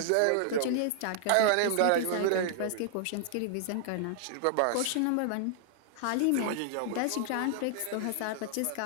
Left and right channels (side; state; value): both; different; correlation -0.01